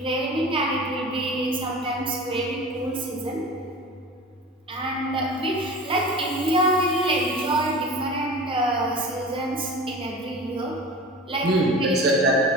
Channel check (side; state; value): both; normal; correlation 0.35